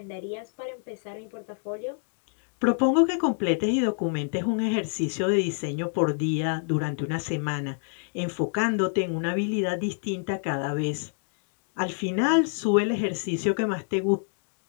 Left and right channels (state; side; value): silent; right; 59 dB below the other